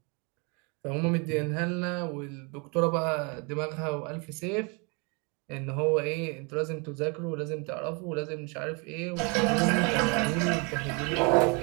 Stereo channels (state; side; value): quieter; left; 32.7 dB